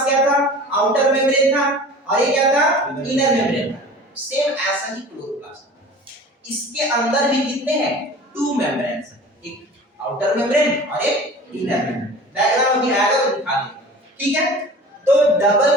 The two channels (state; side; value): normal; both; correlation 0.41